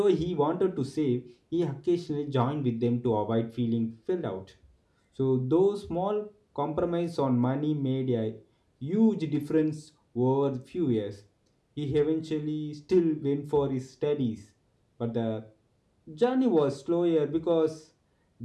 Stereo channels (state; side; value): identical; both; correlation 1.00